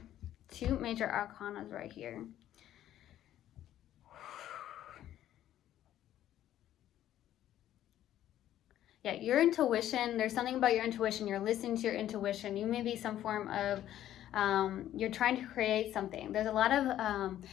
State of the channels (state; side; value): quieter; right; 12.2 dB